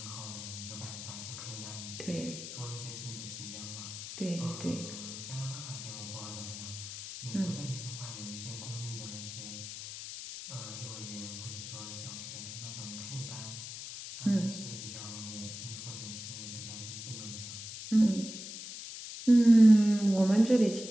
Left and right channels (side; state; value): left; noise; hiss, 9 dB below the sound